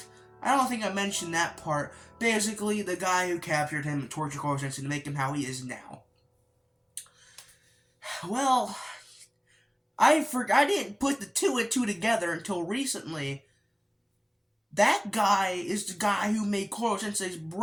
I don't think I mentioned that part. Basically, the guy who captured him and tortured Koro Sensei to make him how he is now. Well, I didn't put the two and two together until recently. That guy is the guy who made Koro Sensei's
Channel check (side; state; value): both; identical; correlation 1.00